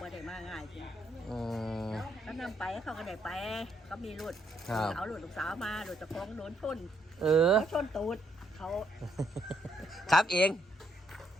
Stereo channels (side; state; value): both; normal; correlation 0.73